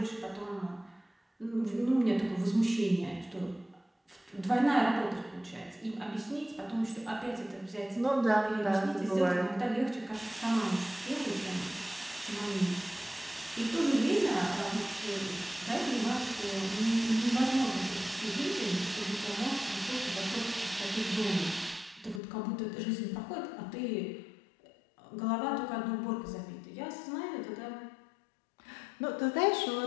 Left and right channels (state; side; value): drops out; right; at 22.2 s